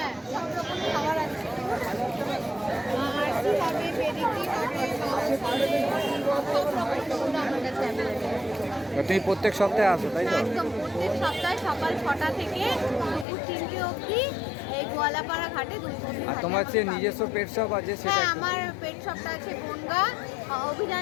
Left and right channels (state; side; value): drops out; right; at 13.2 s